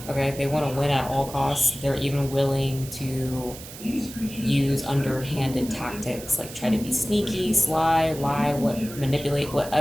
Okay, they want to win at all costs. They're even willing to use underhanded tactics, like try to be sneaky, sly, lie, manipulate,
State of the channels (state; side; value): noise; right; hiss, 14 dB below the sound